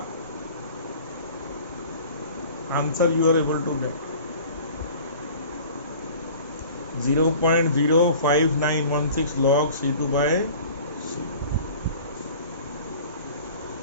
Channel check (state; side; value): inverted; both; correlation -0.45